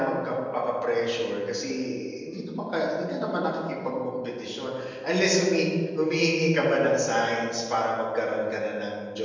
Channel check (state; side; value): identical; both; correlation 1.00